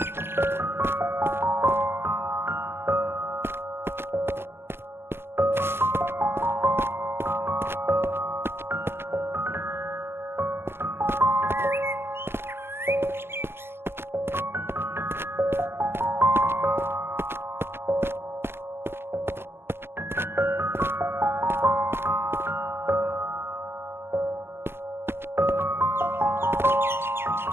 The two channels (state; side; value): late; left; 0.11 ms